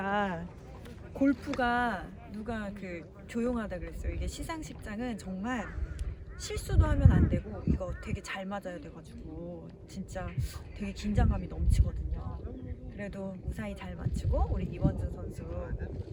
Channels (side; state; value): both; identical; correlation 1.00